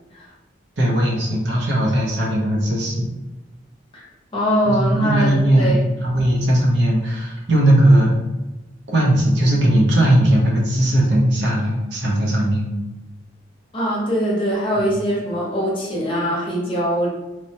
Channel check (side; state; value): both; normal; correlation 0.79